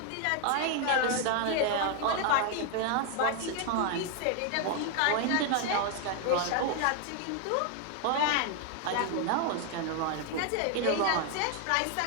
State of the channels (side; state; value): both; different; correlation 0.01